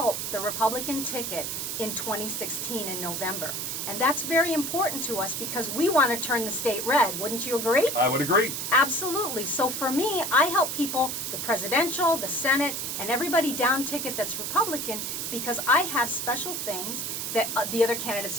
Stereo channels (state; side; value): noise; right; hiss, 3 dB below the sound